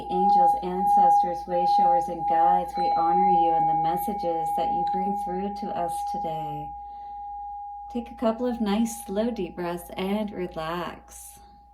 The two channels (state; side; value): identical; both; correlation 1.00